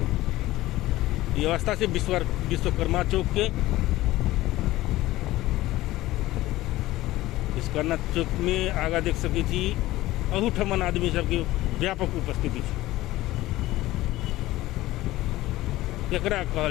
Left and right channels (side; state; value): right; quieter; 16.9 dB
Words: ये अवस्था से विश्वकर्मा चौक के। विश्वकर्मा चौक में आगा देख सकै छी अहूठमन आदमी सबके व्यापक उपस्थिति है। केकरा